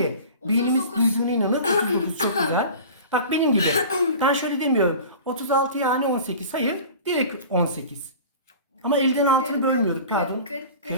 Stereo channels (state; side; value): inverted; both; correlation -0.39